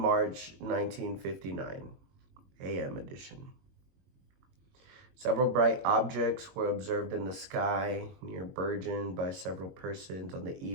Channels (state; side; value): late; left; 22 ms